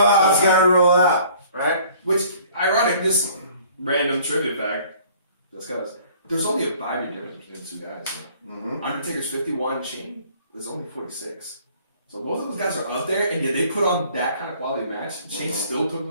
how it's gotta roll out, right? Which, ironic, just random trivia fact, just because there's only a 5-year difference between the two guys. Mm-hmm. Undertaker's 51, Shane is only 46. So both of those guys are up there, and yet they put on that kind of quality match. Shane still took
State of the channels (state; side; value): inverted; both; correlation -0.55